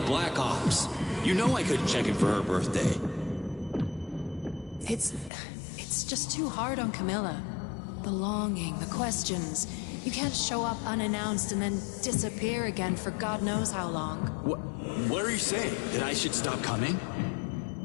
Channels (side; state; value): right; drops out; at 5.3 s